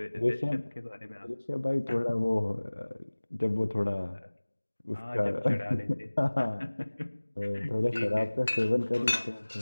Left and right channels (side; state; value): both; inverted; correlation -1.00